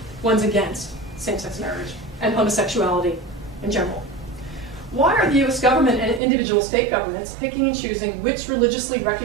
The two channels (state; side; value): drops out; left; at 6.2 s